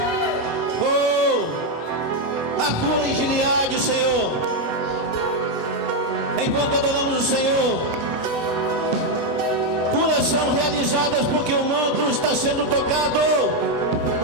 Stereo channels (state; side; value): late; right; 7.8 ms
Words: Oh, a cura em Gileade, Senhor. Enquanto adoramos o Senhor, curas são realizadas porque o manto está sendo tocado.